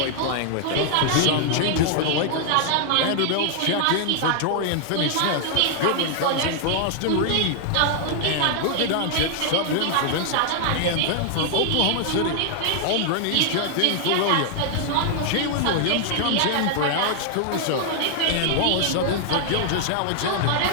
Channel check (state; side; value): different; both; correlation 0.00